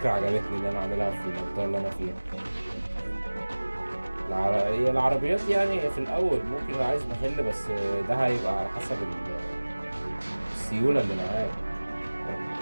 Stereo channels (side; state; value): both; inverted; correlation -1.00